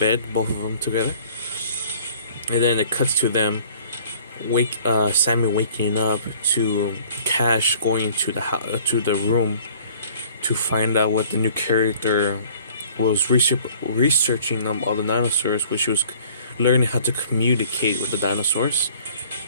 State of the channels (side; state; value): both; inverted; correlation -0.53